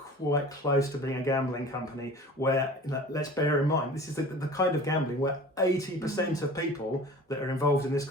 close to being a gambling company where, let's bear in mind, this is the kind of gambling where 80% of people that are involved in this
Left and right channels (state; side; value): normal; both; correlation 0.41